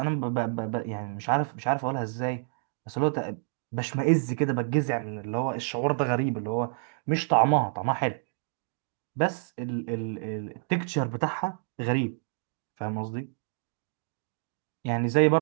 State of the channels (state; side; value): silent; left; digital silence